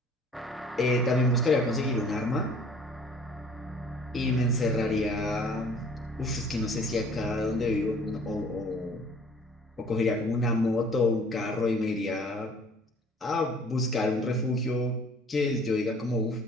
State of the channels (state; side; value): normal; both; correlation 0.53